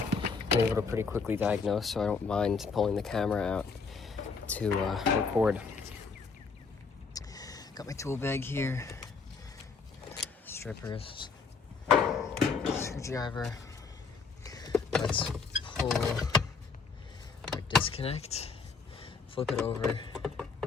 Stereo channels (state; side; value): quieter; right; 5.0 dB